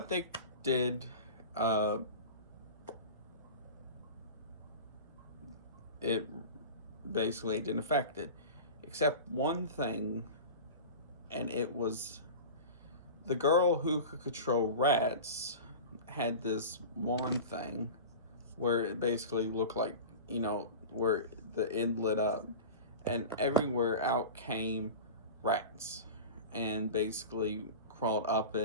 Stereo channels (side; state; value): both; inverted; correlation -0.32